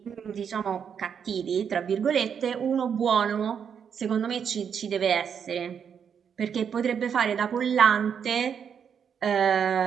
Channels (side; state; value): left; quieter; 7.5 dB